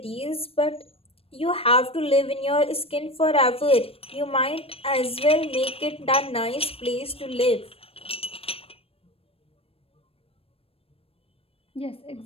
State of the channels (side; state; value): right; late; 0.28 ms